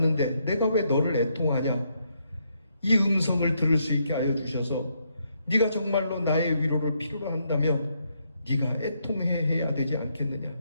내가 왜 너를 애통하냐? 이 음성을 들을 수 있게 하여 주셔서 네가 정말로 나의 위로를 필요로 한다면 네가 애통해야 되지 않겠느냐?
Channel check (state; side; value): inverted; both; correlation -0.76